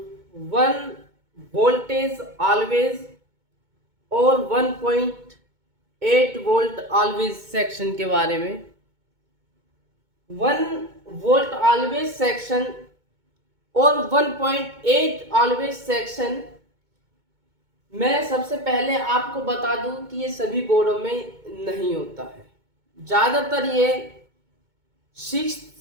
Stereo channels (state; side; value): late; left; 2.2 ms